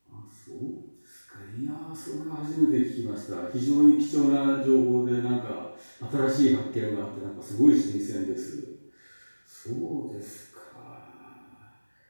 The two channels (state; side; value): inverted; both; correlation -1.00